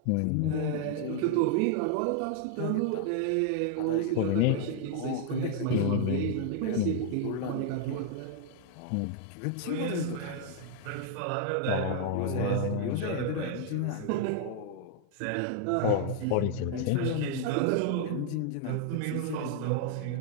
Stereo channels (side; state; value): both; different; correlation 0.00